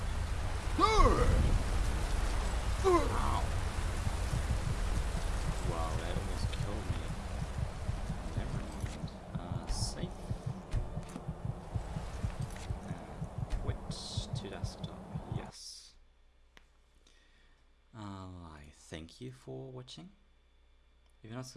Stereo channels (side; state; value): both; identical; correlation 1.00